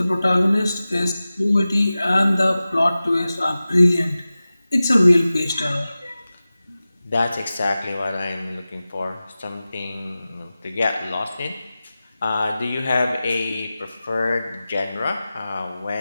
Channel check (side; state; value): both; inverted; correlation -0.96